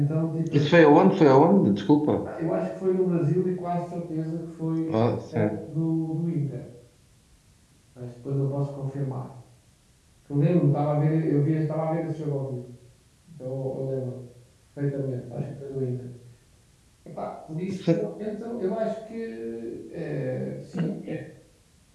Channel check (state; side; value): identical; both; correlation 1.00